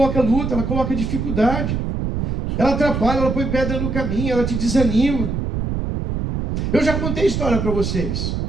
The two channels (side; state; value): right; noise; rumble, 2 dB below the sound